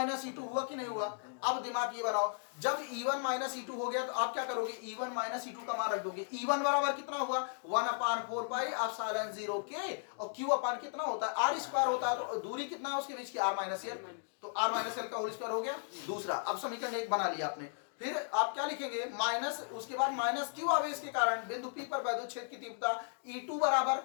- E2 हुआ कि नहीं हुआ? अब दिमाग ये बनाओ, जब E1 - E2 हो गया तो आप क्या करोगे? E1 - E2 का मान रख दोगे। E1 बराबर कितना हुआ? 1/4 पाई एप्सिलॉन 0 K, और Q अपान कितना होता है? r² होता है, तो दूरी कितना है उसके बीच की? r - l, तो r - l का होल स्क्वायर हो गया दूसरा। अब समीकरण 1 बना लिया आपने। फिर आप क्या लिखेंगे? माइनस, उसके बाद -q आवेश के कारण बिंदु P पर वैद्युत क्षेत्र की तीव्रता E2 बराबर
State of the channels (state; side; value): silent; right; digital silence